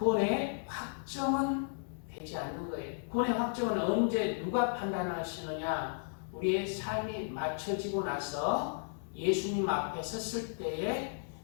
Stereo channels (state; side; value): silent; right; digital silence